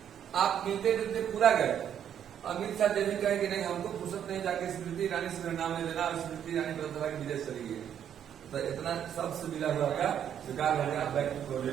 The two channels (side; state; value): left; quieter; 9.3 dB